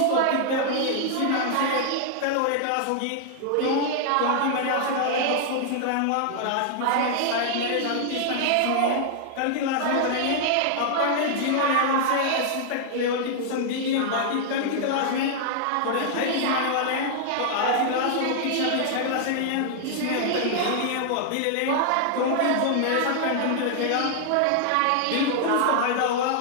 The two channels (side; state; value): both; different; correlation -0.01